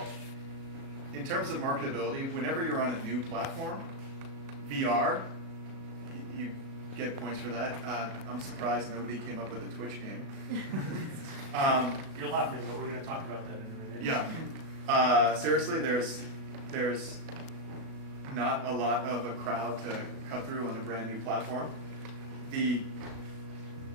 in terms of marketability, whenever you're on a new platform, VR, you get points for that. I'm surprised nobody came up with a Twitch game. You're laughing, but we're going to talk about that in a minute. Yeah. Seriously, there's not a lot of a crowd to cut through on a brand new platform. The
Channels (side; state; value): left; late; 36 ms